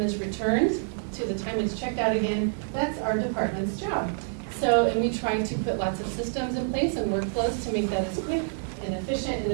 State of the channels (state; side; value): silent; left; digital silence